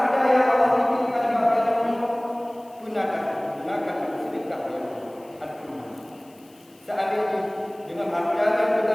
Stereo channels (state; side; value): noise; left; hiss, 29 dB below the sound